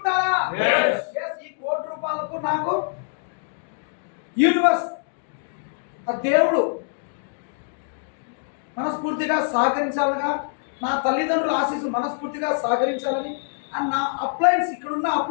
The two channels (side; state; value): right; silent; digital silence